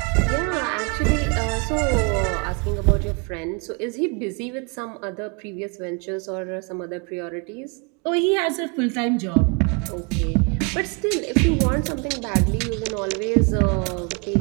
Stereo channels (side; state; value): left; quieter; 32.2 dB